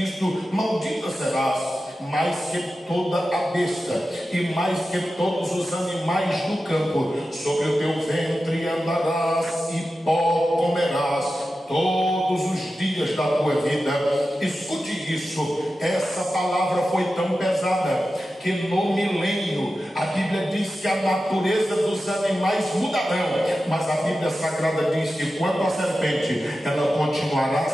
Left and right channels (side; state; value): both; normal; correlation 0.93